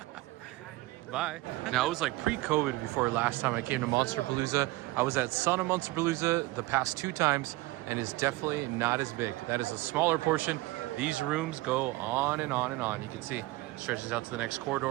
Bye. Now, it was like pre-COVID before last time I came to Monsterpalooza. I was at Son of Monsterpalooza the past 2 times, and it's definitely not as big. That is a smaller portion. These rooms go on and on and on. You can see it stretches out to the next corridor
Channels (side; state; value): left; quieter; 20.1 dB